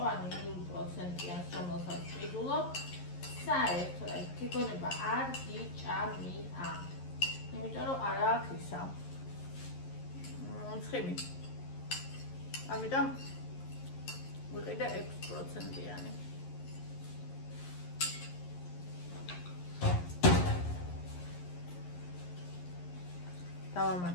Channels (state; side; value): late; right; 11 ms